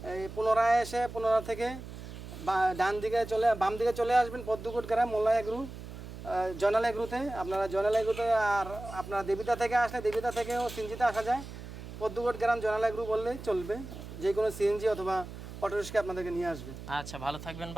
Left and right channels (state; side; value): noise; right; hum, 12 dB below the sound